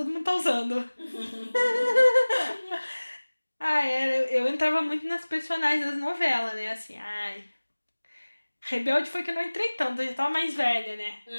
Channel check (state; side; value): inverted; both; correlation -1.00